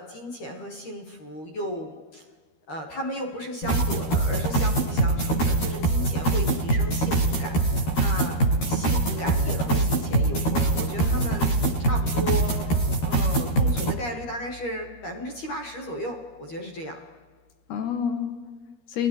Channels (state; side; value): late; right; 13 ms